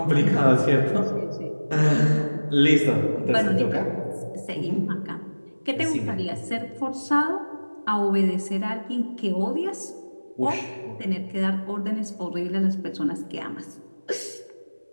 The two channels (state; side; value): inverted; both; correlation -1.00